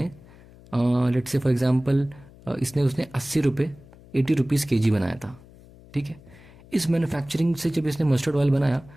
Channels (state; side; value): noise; left; hum, 23 dB below the sound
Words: लेट्स से फॉर एग्जांपल उसने 80 रुपये 80 रुपीज़ kg बनाया था, ठीक है। इस मैन्युफैक्चरिंग से जब इसने मस्टर्ड ऑयल बनाया